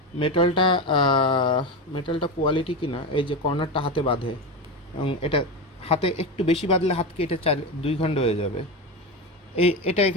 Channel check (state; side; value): normal; both; correlation 0.18